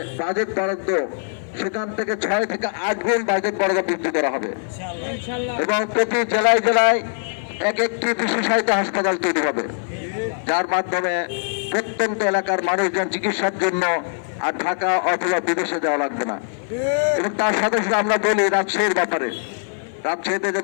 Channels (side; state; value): right; silent; 55 dB below the other